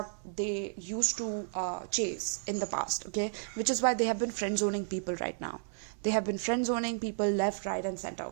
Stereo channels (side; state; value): left; silent; 56 dB below the other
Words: they used to chase in the past. Okay, which is why they have been friend zoning people right now. They have been friend zoning people left, right and center.